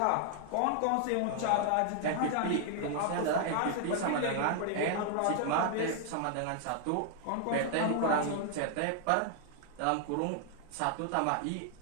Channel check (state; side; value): different; both; correlation 0.00